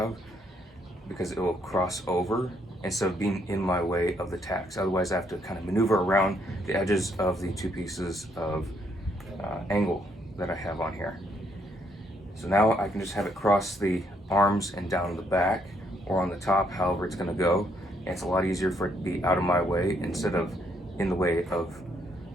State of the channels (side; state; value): both; normal; correlation 0.71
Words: because it will cross over instead of being in my way of the tacks. Otherwise I have to kind of maneuver around the edges of the 2 pieces of angle that I have on here. So now I can just have it cross the arms and down the back or on the top, however it's going to go. And it's a lot easier for it to be out of my way instead of in the way of